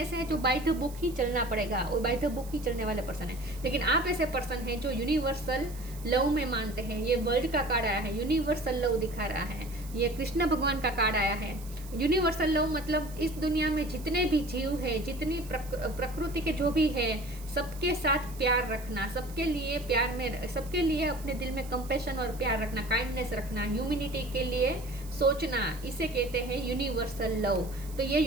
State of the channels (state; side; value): noise; right; hiss, 19 dB below the sound